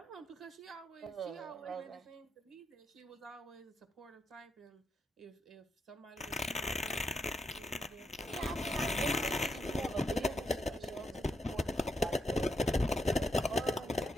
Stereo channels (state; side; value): normal; both; correlation 0.81